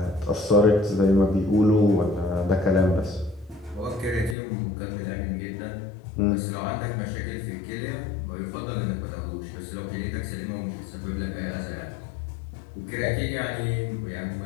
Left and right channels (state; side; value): drops out; right; at 4.4 s